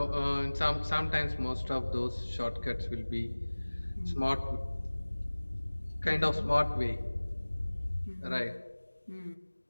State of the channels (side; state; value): both; inverted; correlation -1.00